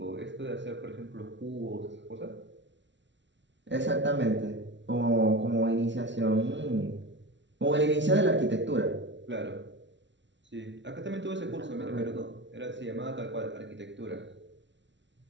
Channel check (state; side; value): late; left; 0.53 ms